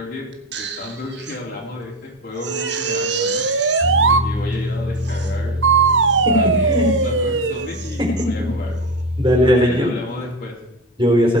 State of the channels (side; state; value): both; normal; correlation 0.20